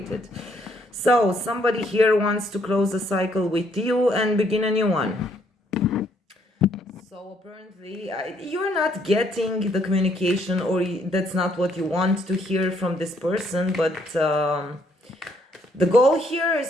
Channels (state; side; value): normal; both; correlation 0.69